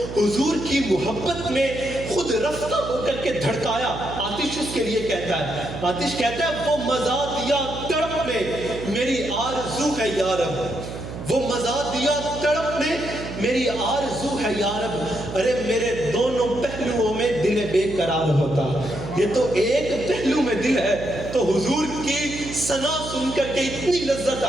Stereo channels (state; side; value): noise; right; hum, 9 dB below the sound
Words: حضور کی محبت میں خود رفتہ ہو کر کے دھڑکایا، آتش اس کے لیے کہتا ہے، آتش کہتا ہے وہ مزا دیا تڑپ نے میری آرزو ہے یا رب، وہ مزا دیا تڑپ نے میری آرزو ہے یا رب۔ ارے میرے دونوں پہلوؤں میں دل بے قرار ہوتا، یہ تو ایک پہلو میں دل ہے تو حضور کی ثنا سن کر کے اتنی لذت